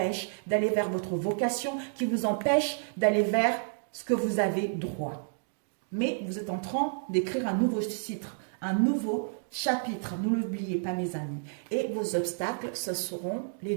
d'aller vers votre vocation, qui vous empêchent d'aller vers ce que vous avez droit. Mais vous êtes en train d'écrire un nouveau titre, un nouveau chapitre. Ne l'oubliez pas, mes amis. Et vos obstacles, ce seront les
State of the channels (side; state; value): left; silent; digital silence